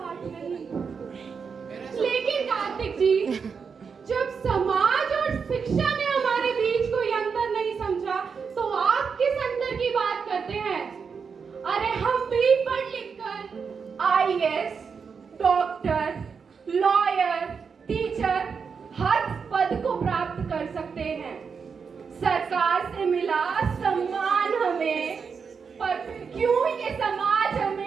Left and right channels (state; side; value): quieter; left; 5.9 dB